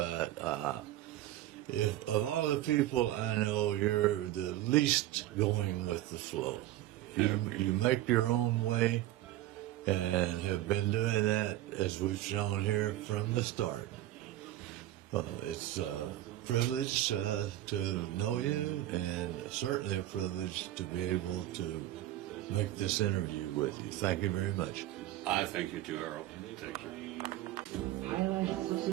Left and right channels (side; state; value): left; quieter; 14.7 dB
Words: if of all the people I know, you're the least going with the flow. You make your own way, and have been doing that, as we've shown here, from the start. It's a privilege to know you, and certainly a privilege to be able to make this interview with you. Thank you very much. I thank you too, Earl. Thank you. Highlights of